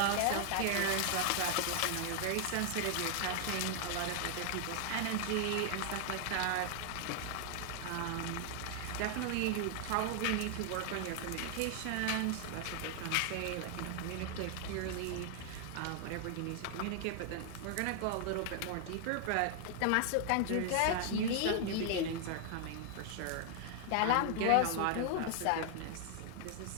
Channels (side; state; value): both; different; correlation 0.00